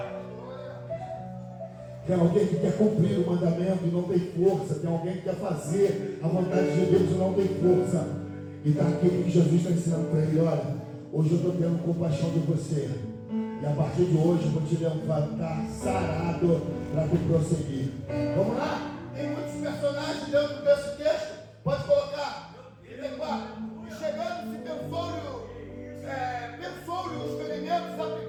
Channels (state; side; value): identical; both; correlation 1.00